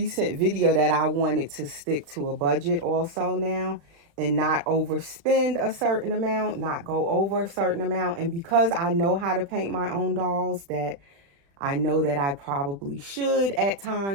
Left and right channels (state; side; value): late; left; 36 ms